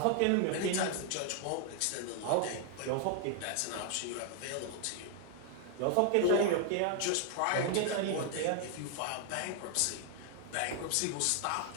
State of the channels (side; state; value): both; different; correlation 0.00